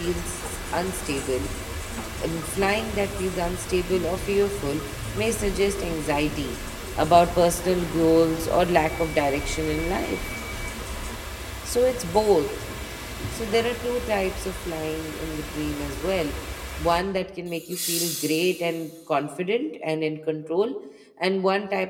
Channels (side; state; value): both; identical; correlation 1.00